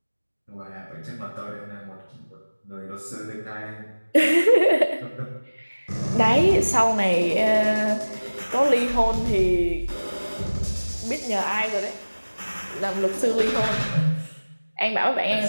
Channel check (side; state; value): both; inverted; correlation -1.00